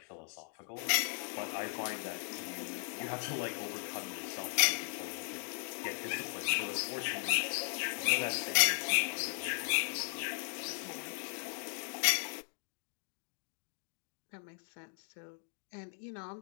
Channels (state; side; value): silent; right; 53 dB below the other